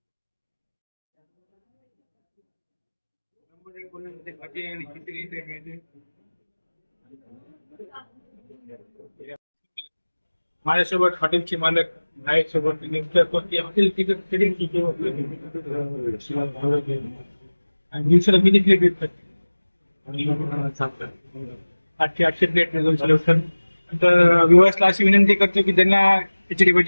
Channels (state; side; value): inverted; both; correlation -1.00